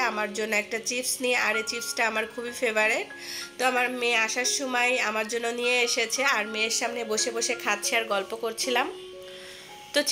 আমার জন্য একটা চিপস নিয়ে। আর এই চিপসটা আমার খুবই ফেভারিট। তো আমার মেয়ে আসার সময় আমার জন্য নিয়ে এসেছে, আর মেয়ের সামনে বসে বসে খাচ্ছি আর গল্প করছিলাম। তো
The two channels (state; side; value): identical; both; correlation 1.00